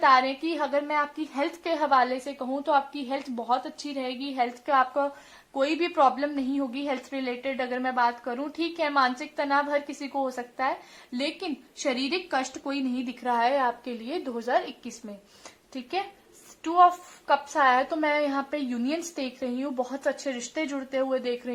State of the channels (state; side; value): identical; both; correlation 1.00